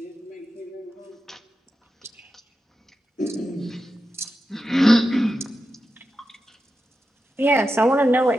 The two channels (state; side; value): normal; both; correlation 0.90